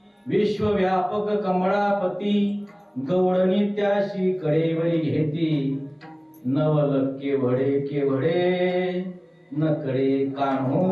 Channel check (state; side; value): identical; both; correlation 1.00